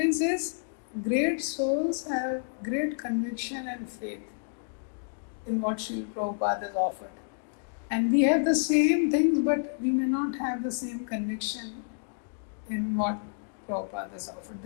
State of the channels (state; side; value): silent; right; digital silence